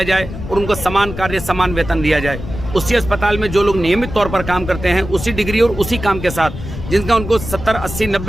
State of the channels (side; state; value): left; noise; rumble, 9 dB below the sound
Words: जाए और उनको समान कार्य समान वेतन दिया जाए। उसी अस्पताल में जो लोग नियमित तौर पर काम करते हैं, उसी डिग्री और उसी काम के साथ, जिनका उनको 70, 80,